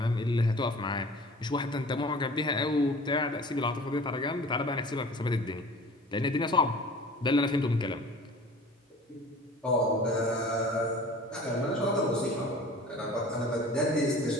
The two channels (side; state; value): both; normal; correlation 0.43